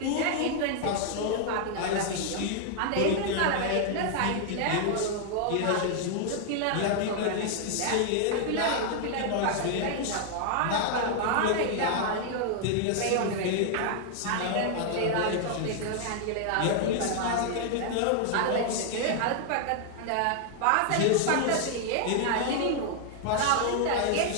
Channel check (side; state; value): both; different; correlation 0.00